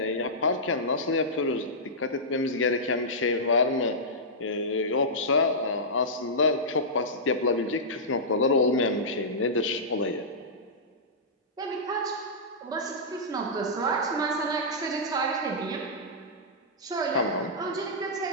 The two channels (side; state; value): both; normal; correlation -0.14